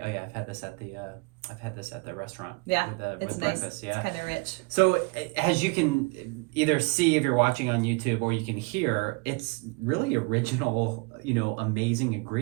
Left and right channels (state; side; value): quieter; left; 29.6 dB